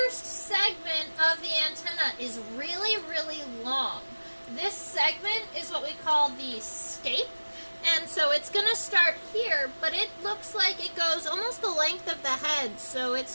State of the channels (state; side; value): inverted; both; correlation -1.00